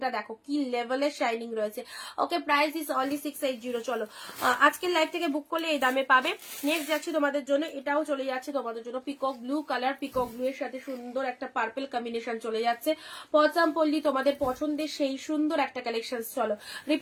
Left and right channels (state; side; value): identical; both; correlation 1.00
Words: দেখো কি লেভেলের শাইনিং রয়েছে, ওকে প্রাইস ইজ অনলি 680। চলো আজকের লাইভ থেকে বুক করলে এই দামে পাবে। নেক্সট যাচ্ছে তোমাদের জন্য, এটাও চলে যাচ্ছে তোমাদের জন্য peacock blue colour, peacock blue এর সাথে সুন্দর একটা একটা পার্পল কম্বিনেশন চলে যাচ্ছে। পচামপল্লি তোমাদের পছন্দের সেই সুন্দর একটা কালেকশন। চলো